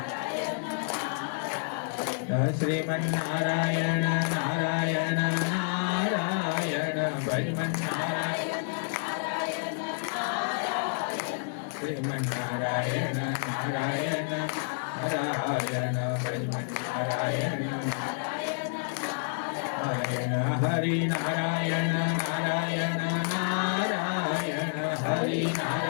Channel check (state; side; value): silent; right; digital silence